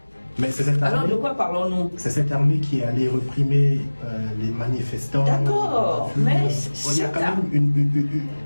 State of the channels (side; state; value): both; inverted; correlation -1.00